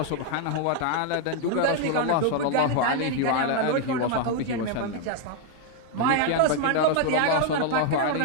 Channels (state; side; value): different; both; correlation 0.00